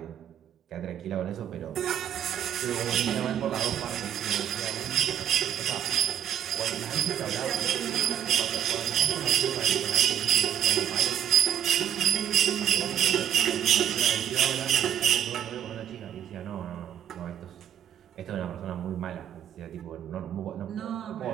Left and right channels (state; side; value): quieter; left; 10.0 dB